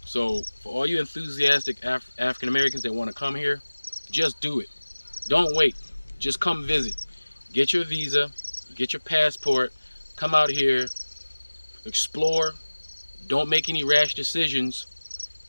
So for all you enthusiastic African Americans that want to come here, just do it. Don't wait. Just come visit. Get your visa, get your passport, come out here, explore. Don't make any rash decisions.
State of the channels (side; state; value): both; inverted; correlation -1.00